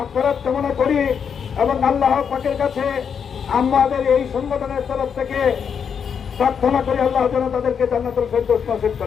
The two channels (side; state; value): right; quieter; 7.1 dB